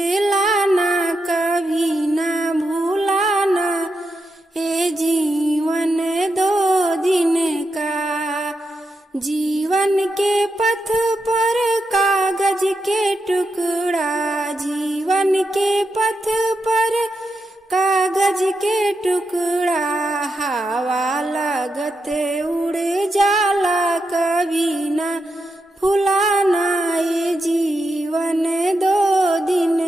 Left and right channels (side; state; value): both; normal; correlation 0.86